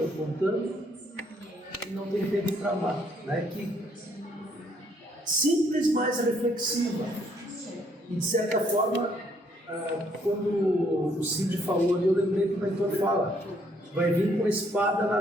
e não tem tempo para amar. Né? Que simples, mas reflexiva. E de certa forma, quando o Cid falou ali, eu lembrei que o mentor fala, vai vir com a espada na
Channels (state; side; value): normal; both; correlation 0.68